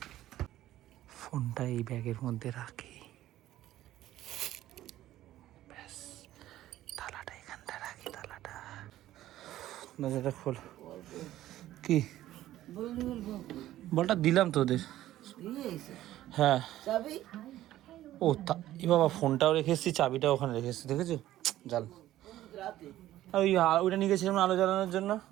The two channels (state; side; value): quieter; left; 14.0 dB